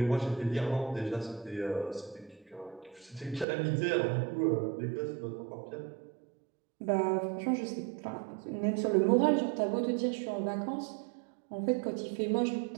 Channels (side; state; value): left; drops out; at 3.5 s